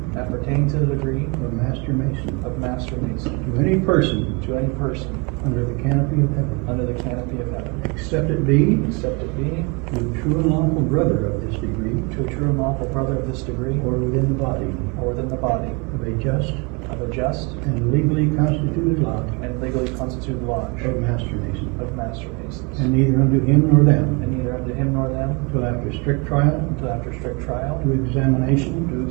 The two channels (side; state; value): left; quieter; 30.6 dB